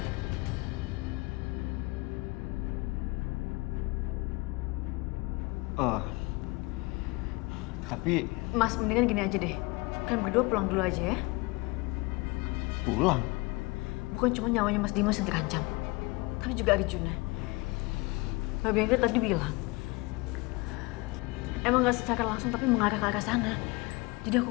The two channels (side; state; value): right; quieter; 24.6 dB